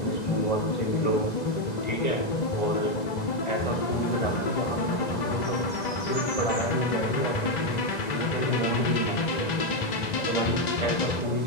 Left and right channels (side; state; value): right; late; 2.0 ms